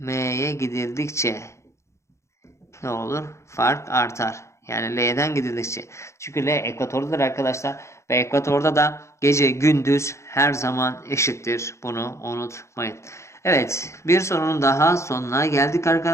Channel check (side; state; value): right; late; 0.14 ms